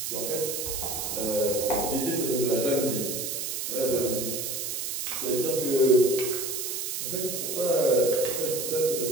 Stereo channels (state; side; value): noise; right; hiss, 3 dB below the sound